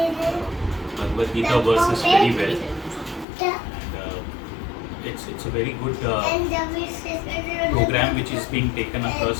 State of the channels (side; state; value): right; drops out; at 3.2 s